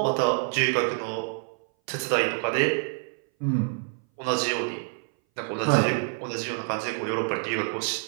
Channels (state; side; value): silent; left; 58 dB below the other